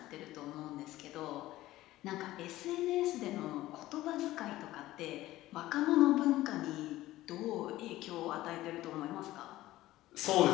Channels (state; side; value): quieter; right; 16.1 dB